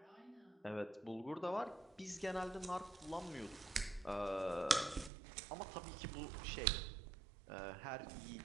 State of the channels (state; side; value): drops out; left; at 5.1 s